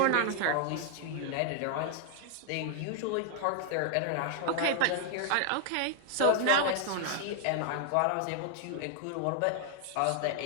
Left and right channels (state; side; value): different; both; correlation 0.00